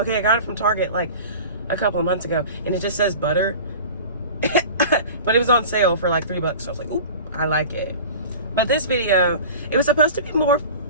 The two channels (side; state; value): both; inverted; correlation -0.38